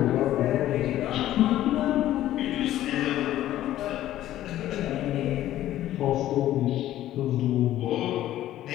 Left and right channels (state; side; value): quieter; right; 13.5 dB